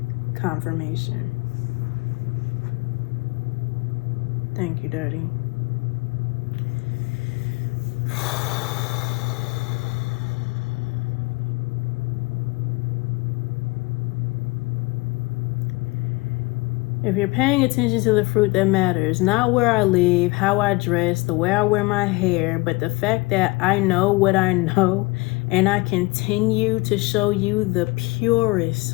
Confirmation. Thank you, Daddy. If you're paying attention to the fruit that matters, not where I live, how I dress, the way I wear my hair, but the fact that I know what I know and I continue to show you the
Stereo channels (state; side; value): quieter; right; 23.7 dB